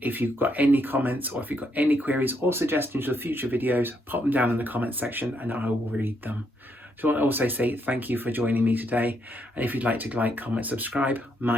if you've got any comments or if you've got any queries or suggestions for future videos, pop them down in the comments section and I will read them. So I want to also say thank you for joining me today. And if you'd like to like, comment, subscribe,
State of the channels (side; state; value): both; normal; correlation 0.76